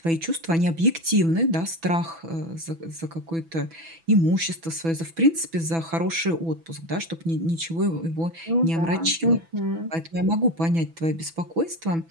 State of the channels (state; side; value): late; left; 6.0 ms